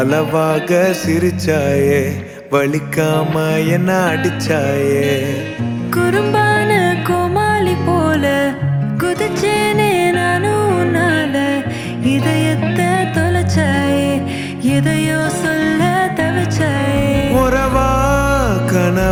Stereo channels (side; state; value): both; identical; correlation 1.00